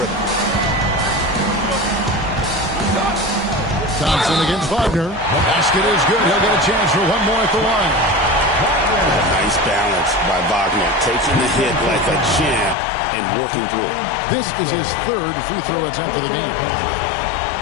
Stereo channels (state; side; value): drops out; right; at 12.8 s